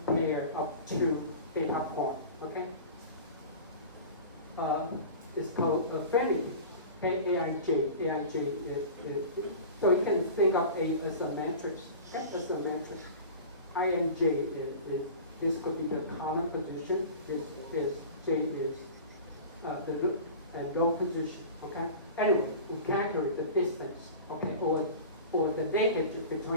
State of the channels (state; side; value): inverted; both; correlation -0.36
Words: pair of two data points. Okay. It's called affinity. AIJ. AIJ is, so you can think of A as a matrix. Okay, as a matrix. INJ is this could be the column position. This J is the row position. Okay. Anyway, we calculate the distance. Okay, or the linkage